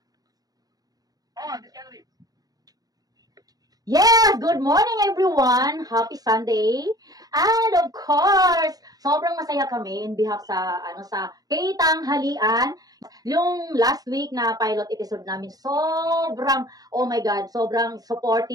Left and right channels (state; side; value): late; left; 0.18 ms